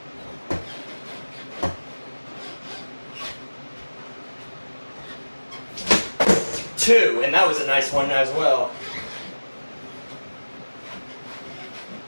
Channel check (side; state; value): both; inverted; correlation -1.00